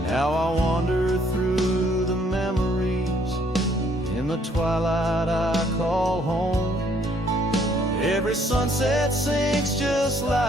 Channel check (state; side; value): normal; both; correlation 0.65